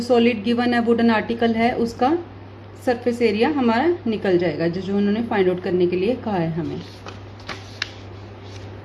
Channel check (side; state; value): both; identical; correlation 1.00